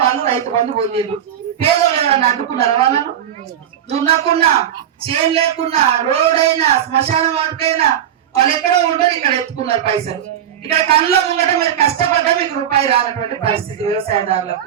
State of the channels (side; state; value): left; quieter; 10.0 dB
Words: వాళ్ళు రైతు బంధు పొందిండ్రు. పేదోళ్ళు ఎవరైనా అడ్డుకున్నారా? వాళ్ళను దున్నకున్నా, చేను లేకున్నా, రోడ్ అయినా, శ్మశాన వాటికైనా వాళ్ళు ఎక్కడో ఉండరు, ఇక్కడ ఎత్తుకున్నారు పైసలు. ఇక్కడ కళ్ళ ముంగట మీరు కష్టపడ్డా మీకు రూపాయి రానటువంటి పరిస్థితి వ్యవసాయదారులకు.